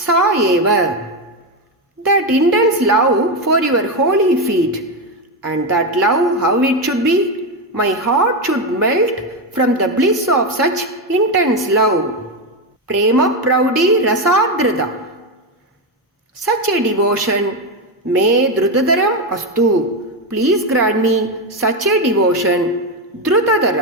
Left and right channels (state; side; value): normal; both; correlation 0.10